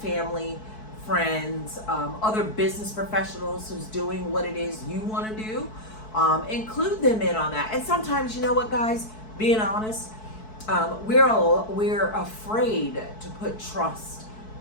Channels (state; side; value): late; right; 4.6 ms